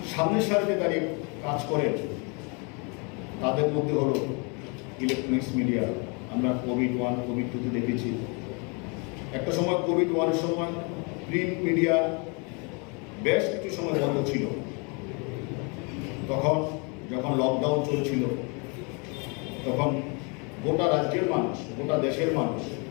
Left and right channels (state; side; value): quieter; right; 33.2 dB